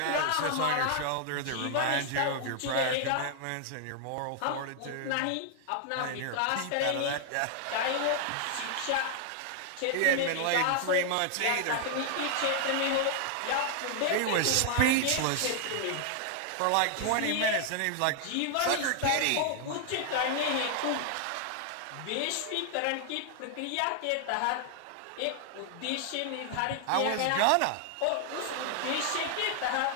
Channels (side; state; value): both; different; correlation 0.00